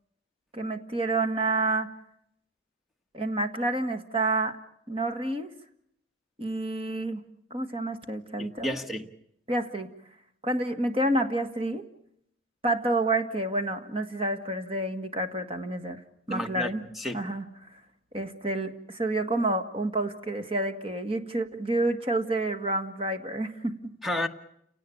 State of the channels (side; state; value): both; normal; correlation 0.32